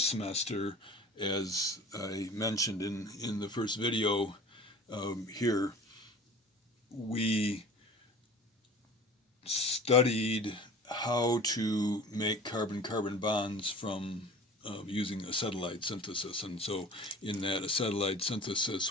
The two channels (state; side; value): normal; both; correlation 0.41